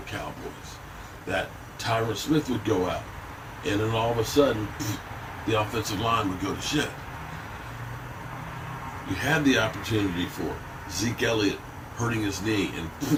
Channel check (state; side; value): identical; both; correlation 1.00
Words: Cowboys. That Tyron Smith would go out, and then all of a sudden, the offensive line would go to shit. You had the opportunity for Zeke Elliott hurting his knee